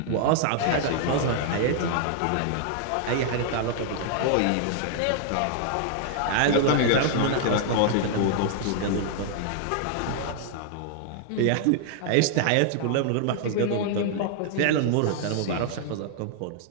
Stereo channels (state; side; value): different; both; correlation 0.00